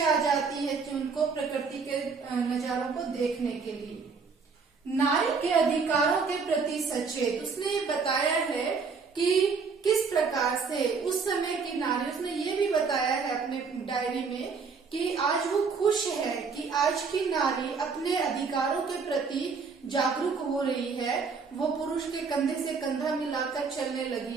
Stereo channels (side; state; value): left; quieter; 5.1 dB